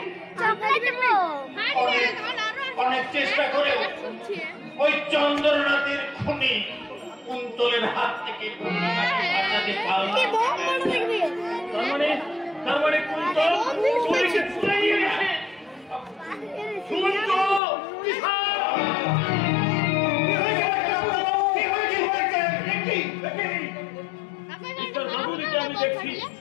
অনেক চেষ্টা করে ওই চন্দ্রনাথের খুনি কুন্তলের হাত থেকে তার মানে কুন্তল গুলিকে ছুড়ে নিয়ে গেছে। আমি দেখছি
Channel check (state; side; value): drops out; right; at 17.6 s